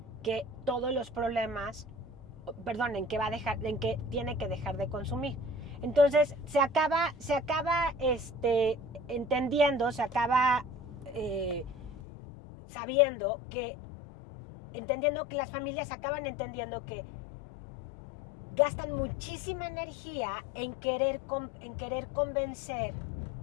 que todos los problemas, en que tiene que dejar de consumir. Entonces se acaba entendiendo, se acaba entendiendo que las familias acaban entendiendo que gastan muchísima energía en querer convencer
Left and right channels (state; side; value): drops out; right; at 12.0 s